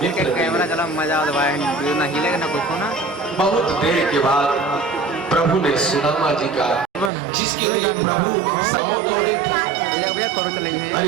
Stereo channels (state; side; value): drops out; left; at 7.1 s